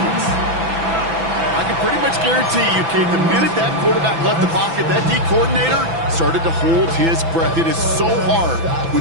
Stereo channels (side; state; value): left; late; 6.0 ms